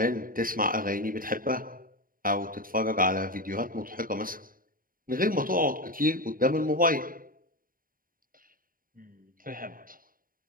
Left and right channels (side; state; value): left; late; 0.41 ms